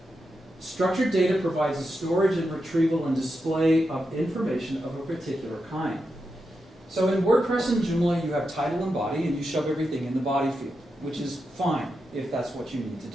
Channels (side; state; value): both; normal; correlation 0.87